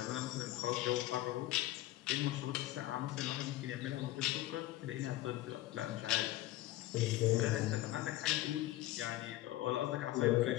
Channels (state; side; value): quieter; right; 15.9 dB